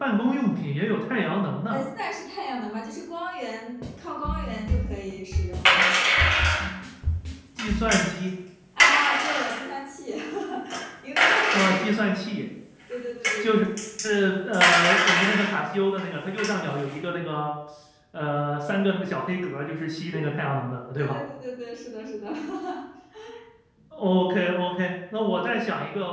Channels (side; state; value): both; identical; correlation 1.00